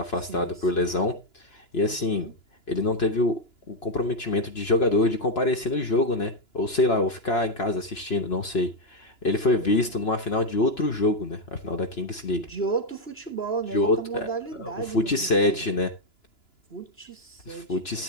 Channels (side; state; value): right; late; 2.9 ms